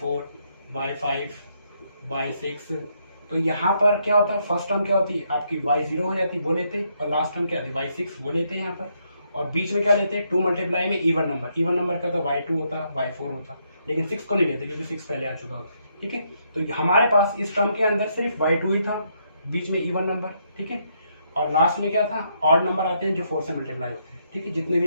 y5 y6, तो यहाँ पर क्या होता है, फर्स्ट टर्म क्या होती आपकी y0 हो जाती, वो लेते, और लास्ट टर्म क्या होती y6 वो लेते हैं यहाँ पर। और बीच में क्या लेते हैं 2 मल्टीप्लाई में इवन नंबर क्या होता y2 होता y4 होता, लेकिन 6 को नहीं लेते क्योंकि 6 पहले आ चुका होता है, ठीक है। तो हमारे पास इस टर्म के अंदर सिर्फ y2 ही था, बीच में इवन नंबर, ठीक है, और लास्ट में क्या था, ऑड नंबर आते हैं जो 4 से मल्टीप्लाई होते हैं, ठीक है। जितने भी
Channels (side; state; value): both; inverted; correlation -0.75